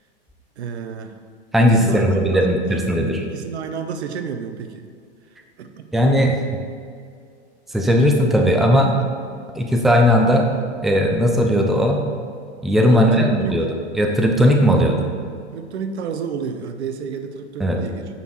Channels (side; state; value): both; normal; correlation 0.54